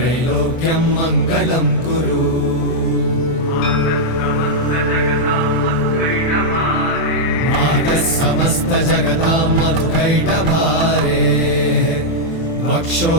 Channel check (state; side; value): late; right; 24 ms